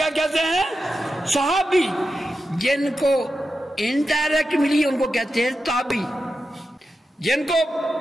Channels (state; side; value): normal; both; correlation 0.90